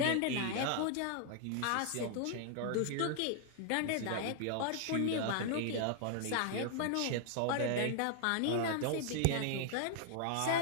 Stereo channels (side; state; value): both; different; correlation 0.00